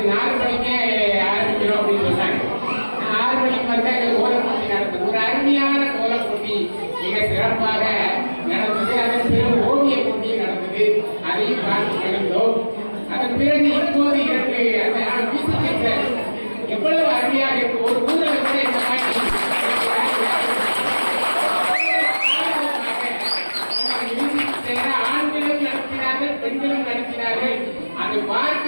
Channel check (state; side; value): inverted; both; correlation -1.00